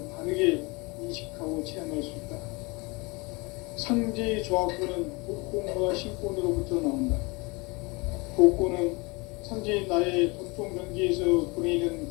바르게 인식하고 체험할 수 있다. 상제의 조합권은 복권과 신권으로부터 나온다. 복권은 상제의 나의 도통 경계에서 보내는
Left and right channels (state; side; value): quieter; right; 26.9 dB